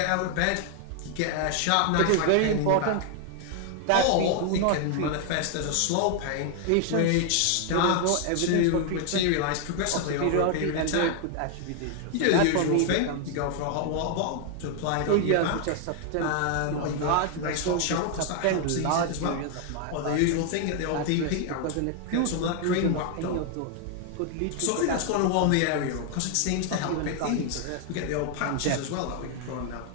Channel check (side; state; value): both; different; correlation 0.00